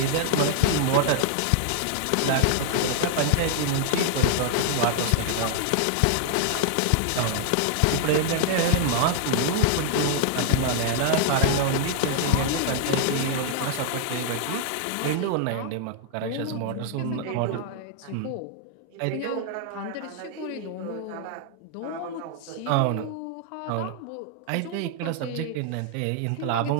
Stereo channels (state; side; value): different; both; correlation 0.00